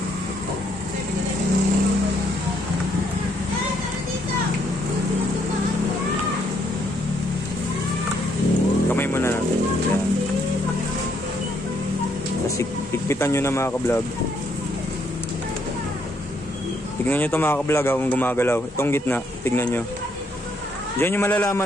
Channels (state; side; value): normal; both; correlation 0.72